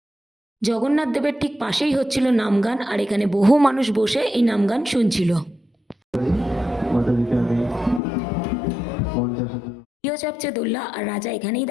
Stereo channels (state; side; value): drops out; right; at 8.0 s